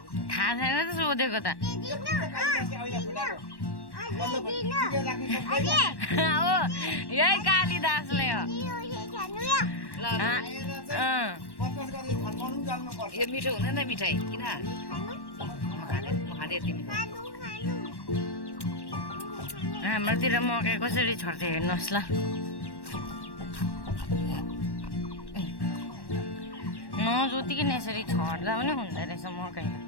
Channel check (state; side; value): late; right; 1.1 ms